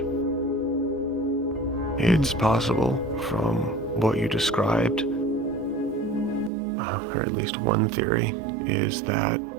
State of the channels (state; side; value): drops out; left; at 6.5 s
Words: It's possible from what you described, or at least one theory, is that